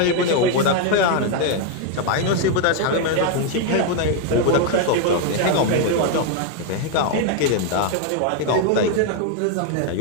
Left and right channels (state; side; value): different; both; correlation 0.01